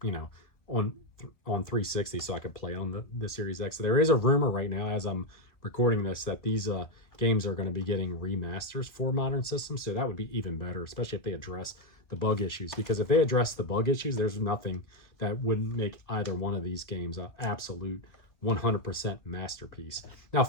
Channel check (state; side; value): late; right; 1.6 ms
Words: on 360, so I could play on the Series X. So there is a rumor right now, as I'm recording this, that these games are going to be getting remasters for modern systems. So that would be even better, especially if they address the bug issues, because if they address the bug issues, there's nothing that wouldn't make either one of these games an absolute 100% masterpiece. Now